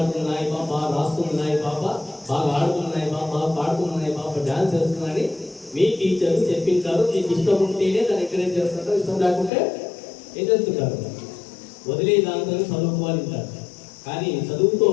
ఈ పాప బాగా రాస్తున్నాయి, ఈ పాప బాగా ఆడుతున్నాయి, ఈ పాప బాగా పాడుతున్నాయి, ఈ పాప డ్యాన్స్ చేస్తున్నాయని మీ టీచర్లు చెప్పింటారు. మీకు ఇష్టం ఉంటేనే దాన్ని ఎంకరేజ్ చేస్తుంటారు, ఇష్టం లేకుంటే ఏం చేస్తుంటారు? వదిలే దాంతో చదువుకోవాలంటారు. కానీ చదువుతో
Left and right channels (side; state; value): right; drops out; at 9.5 s